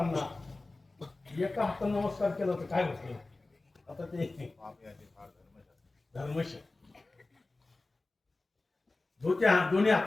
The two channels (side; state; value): right; quieter; 3.2 dB